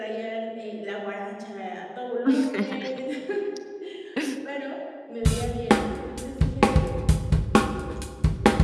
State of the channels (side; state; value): both; identical; correlation 1.00